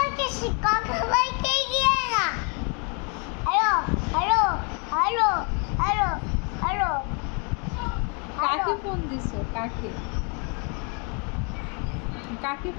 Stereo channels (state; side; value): quieter; right; 35.9 dB